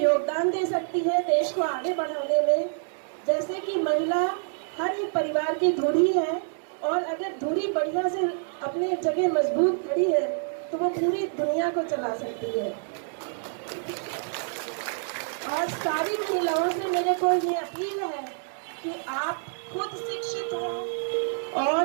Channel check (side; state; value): left; silent; digital silence